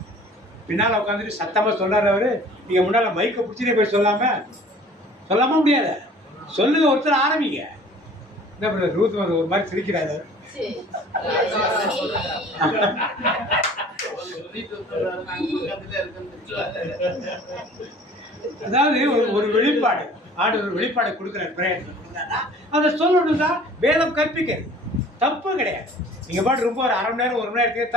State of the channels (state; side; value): normal; both; correlation 0.49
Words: பின்னால உட்காந்துட்டு சத்தமா சொல்றாரு அவரு. நீங்க முன்னால மைக்க பிடிச்சிட்டே போய் சொல்லாம முடியாது. சொல்லுங்க, ஒருத்தர் ஆரம்பிங்க. என்ன பண்ண ரூத் ஒரு மாதிரி சிரிக்கிறாரு. அதாவது ஒரு வெளிப்பாடு ஆண்டவர் வெளிப்பாடு கொடுக்குற பிரயத்னம் அதை சொல்லணும் தான் வேதம் கற்பிக்கிறது. தப்பு கிடையாது. நீங்க பாட்டு ரொம்ப ஒரு அரை மணி நேரம் 1 மணி நேரத்துக்கு